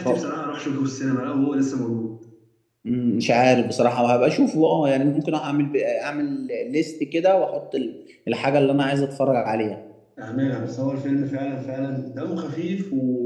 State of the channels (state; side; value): identical; both; correlation 1.00